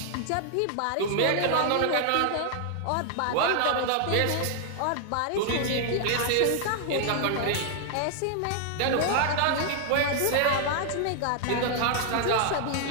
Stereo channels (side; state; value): both; different; correlation 0.00